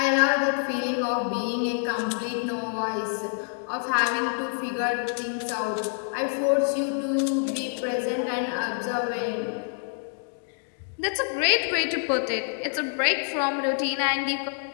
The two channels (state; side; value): silent; right; digital silence